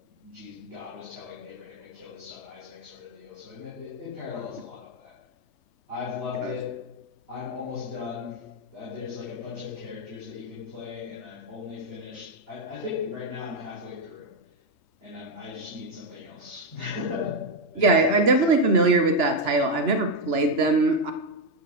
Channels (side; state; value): right; late; 2.9 ms